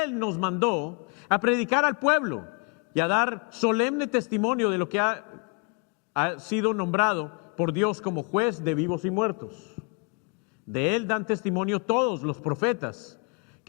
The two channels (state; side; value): quieter; right; 32.8 dB